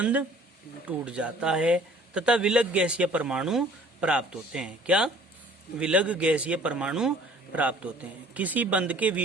टूट जाता है तथा विलग गैसीय परमाणु प्राप्त होते हैं। क्या? विलग गैसीय परमाणु प्राप्त होते हैं। किसी बंध के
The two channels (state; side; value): normal; both; correlation 0.52